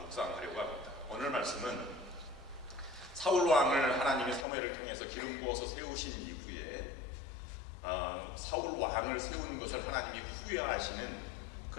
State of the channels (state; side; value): drops out; right; at 4.5 s